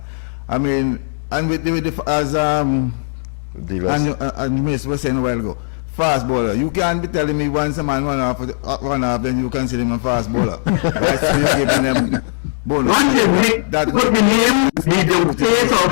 I mean, and with the as and Miss was saying a while ago, fast bowler. You can't be telling me once a man run off, then you consider him a fast bowler. Right? So you're giving them bonus. Once you make the name, he don't say so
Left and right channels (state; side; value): silent; right; digital silence